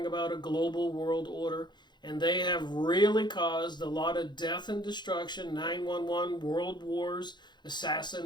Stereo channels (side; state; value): right; late; 0.21 ms